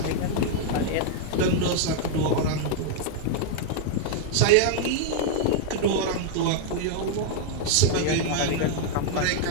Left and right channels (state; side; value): different; both; correlation 0.00